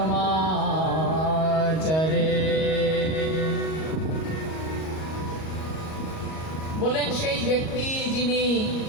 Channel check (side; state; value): right; late; 38 ms